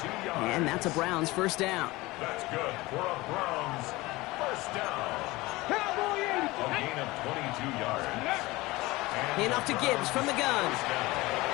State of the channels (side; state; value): right; quieter; 20.7 dB